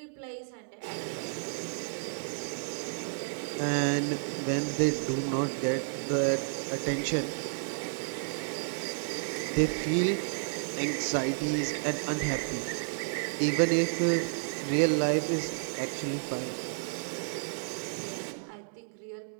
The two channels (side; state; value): left; silent; digital silence